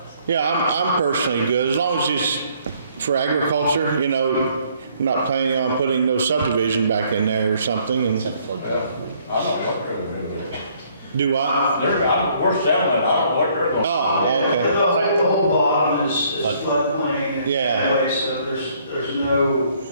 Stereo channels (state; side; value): inverted; both; correlation -0.64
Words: it. yeah, I'm personally good, as long as it's for agriculture, you know, I'm not planning on putting no subdivision back in there or something, and I'm not helping them with it. do what? We're selling it, I don't know what they're going to. Oh, okay, The whole bottom is floodplain Yeah. anyway, so there's no